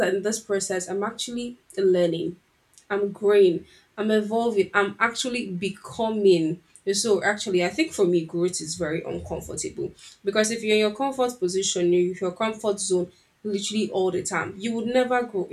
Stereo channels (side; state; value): both; identical; correlation 1.00